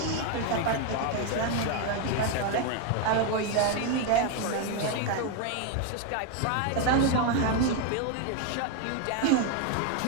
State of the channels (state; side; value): different; both; correlation 0.01